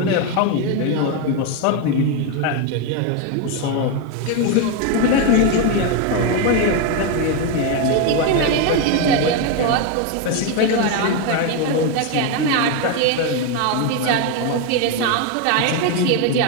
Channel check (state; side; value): different; both; correlation 0.02